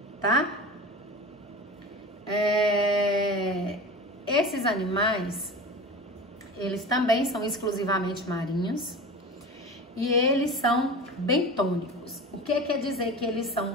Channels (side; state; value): both; normal; correlation 0.33